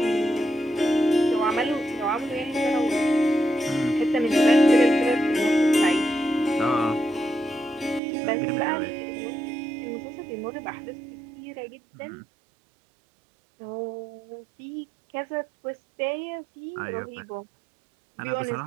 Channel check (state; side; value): drops out; left; at 8.0 s